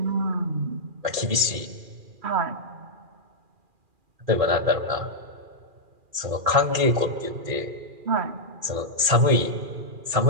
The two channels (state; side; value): late; left; 2.4 ms